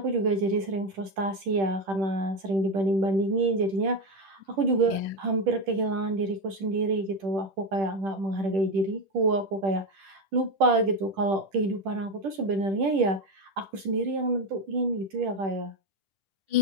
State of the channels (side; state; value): left; late; 10 ms